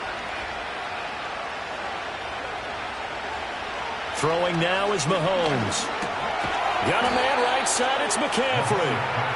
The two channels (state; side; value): identical; both; correlation 1.00